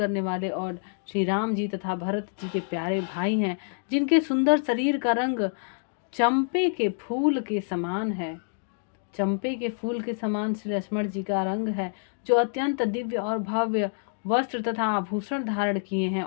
वाले और श्री राम जी तथा भरत जी के प्यारे भाई हैं, जिनके सुंदर शरीर का रंग चंपे के फूल के समान है। चंपे के फूल के समान श्री लक्ष्मण जी का रंग है, जो अत्यंत दिव्य और भव्य वस्त्र तथा आभूषण धारण किए हैं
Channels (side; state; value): right; silent; digital silence